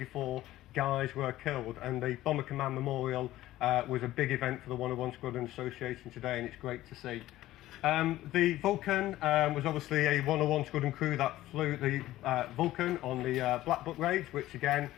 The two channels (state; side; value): quieter; right; 15.4 dB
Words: guys were killed, and the Bomber Command Memorial was a big event for the 101 Squadron Association today, and it's great to see. The Vulcan was obviously a 101 Squadron crew that flew the Vulcan on the Black Book raids, which again